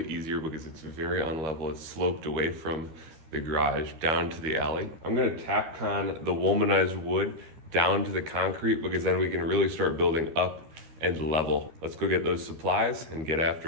easier because it's very unlevel. It's sloped away from the garage down to the alley. I'm gonna Tapcon the womanized wood down to the concrete because then we can really start building up and level. Let's go get those supplies and get after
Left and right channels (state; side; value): late; left; 13 ms